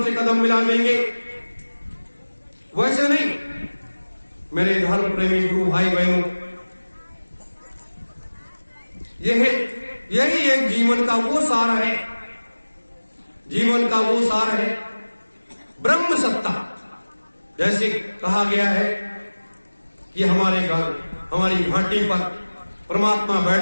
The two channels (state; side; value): inverted; both; correlation -1.00